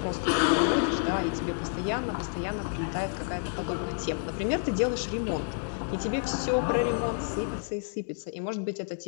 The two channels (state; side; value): silent; right; 58 dB below the other